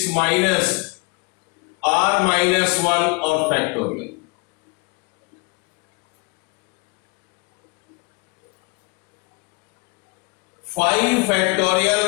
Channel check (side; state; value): right; quieter; 29.4 dB